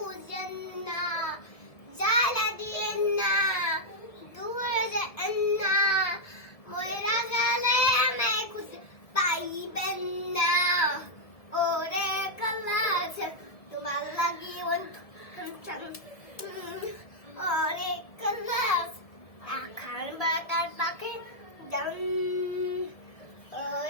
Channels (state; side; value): late; right; 1.7 ms